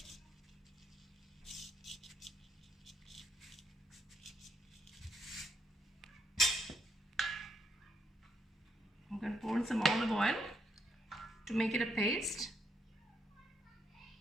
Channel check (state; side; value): normal; both; correlation 0.76